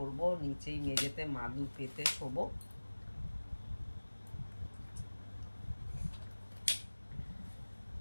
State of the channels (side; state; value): both; inverted; correlation -1.00